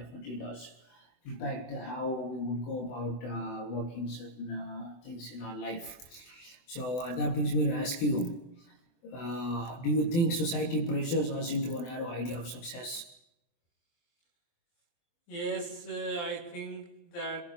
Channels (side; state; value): right; late; 24 ms